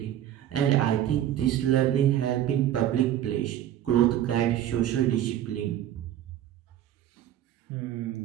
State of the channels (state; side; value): quieter; left; 11.6 dB